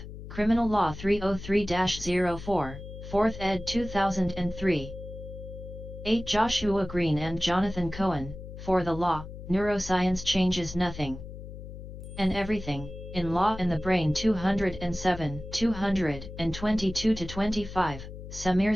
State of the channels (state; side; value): noise; left; hum, 12 dB below the sound